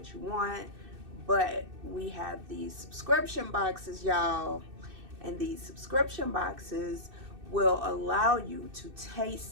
you want, but we have these subscription boxes, y'all. And these subscription boxes will allow you to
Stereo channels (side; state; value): left; late; 2.6 ms